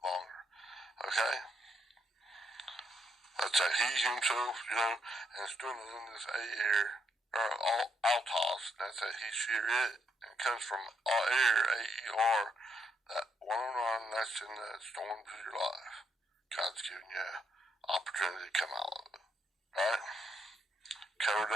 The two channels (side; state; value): both; normal; correlation 0.76